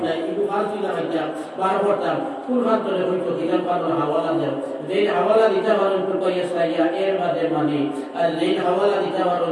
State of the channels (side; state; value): both; identical; correlation 1.00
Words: একটু ফালসি লাগাইতাম বার করতাম কোন খান্তরে হইতো কিতাব পানোর হাওয়ালা দেও যেই হাওয়ালা দিতে পারো টুকাইয়া সাইয়া এর বাদে মানে আর যেই হাওয়ালা দিতে পারো